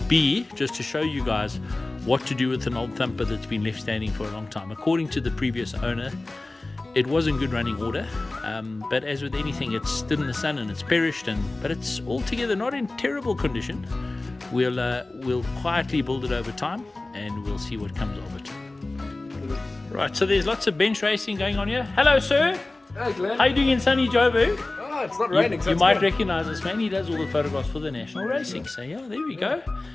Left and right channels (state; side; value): quieter; right; 3.0 dB